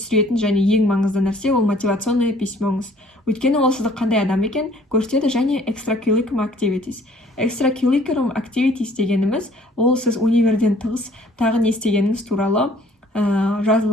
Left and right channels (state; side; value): normal; both; correlation 0.57